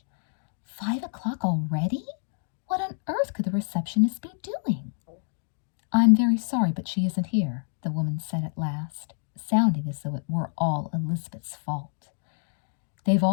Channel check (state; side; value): silent; right; digital silence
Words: 5 o'clock already? What on earth could the receptionist be doing? I'm very sorry, but she isn't here, the woman said at last, sounding as though it were all Elizabeth's fault. They've